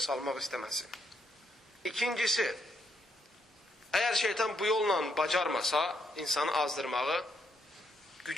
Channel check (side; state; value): both; normal; correlation 0.76